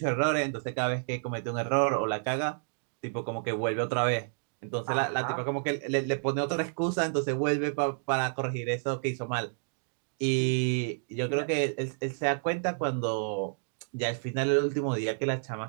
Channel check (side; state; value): left; silent; digital silence